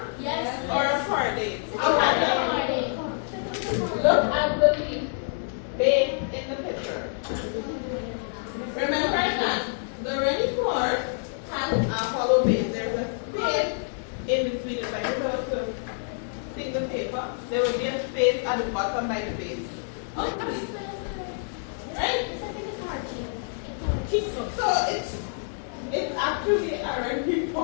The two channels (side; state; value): right; silent; digital silence